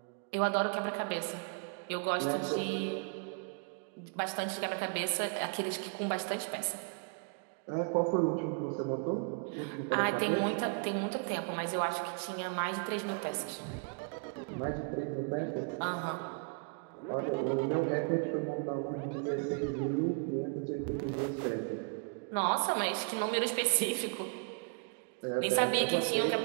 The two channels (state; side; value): quieter; left; 37.9 dB